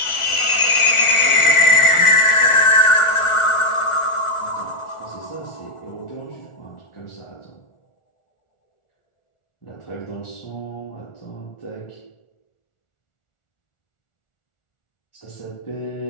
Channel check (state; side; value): late; right; 1.4 ms